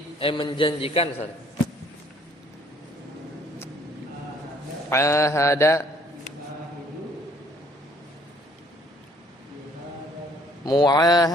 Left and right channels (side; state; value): both; normal; correlation 0.60